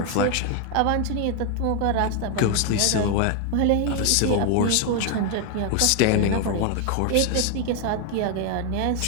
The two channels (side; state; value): both; different; correlation 0.01